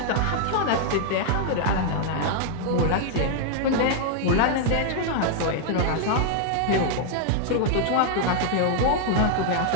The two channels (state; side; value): different; both; correlation -0.01